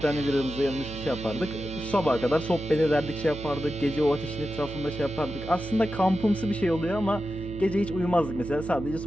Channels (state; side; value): noise; right; hum, 11 dB below the sound